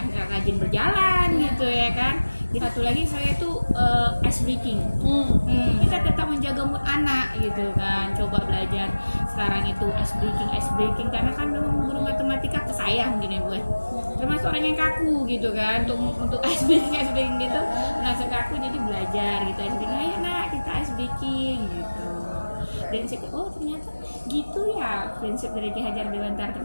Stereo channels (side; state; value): both; inverted; correlation -1.00